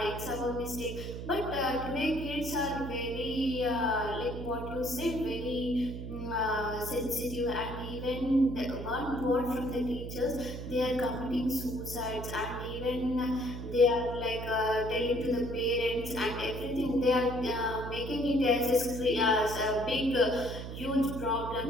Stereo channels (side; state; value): right; noise; hum, 8 dB below the sound